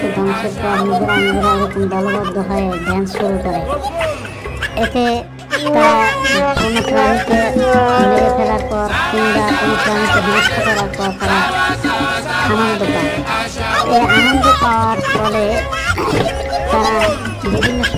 ধ্বংসের পর নিজেরা এরকম দলবদ্ধ হয়ে ড্যান্স শুরু করে। এতে তারা কোনো প্রাণীকে মেরে ফেলার পর কিংবা কোনো প্রাণীকে বিনষ্ট করার পর তারা আনন্দ পায়। এই আনন্দ পাওয়ার ফলে তারা বিভিন্ন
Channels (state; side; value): identical; both; correlation 1.00